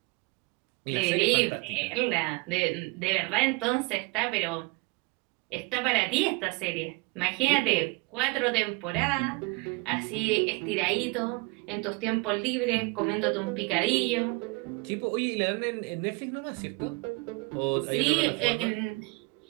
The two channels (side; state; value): left; quieter; 26.4 dB